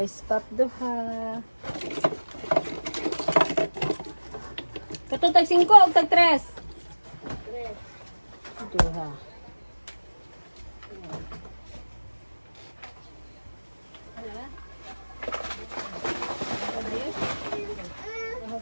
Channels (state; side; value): inverted; both; correlation -1.00